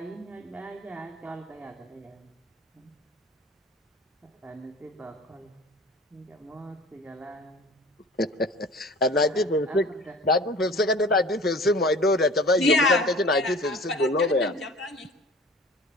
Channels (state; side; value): normal; both; correlation 0.43